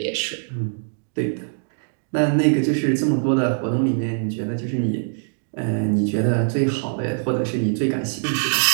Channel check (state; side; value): silent; left; digital silence